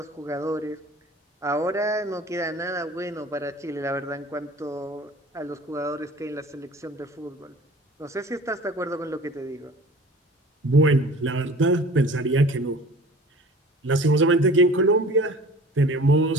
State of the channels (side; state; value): both; normal; correlation 0.44